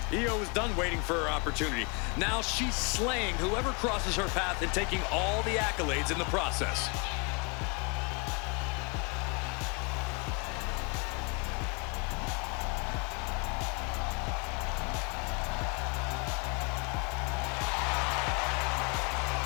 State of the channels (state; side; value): quieter; right; 32.5 dB